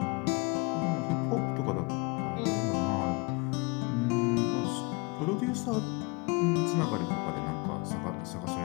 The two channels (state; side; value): quieter; right; 28.5 dB